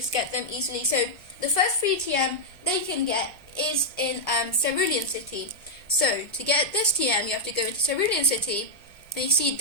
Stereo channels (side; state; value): both; normal; correlation -0.05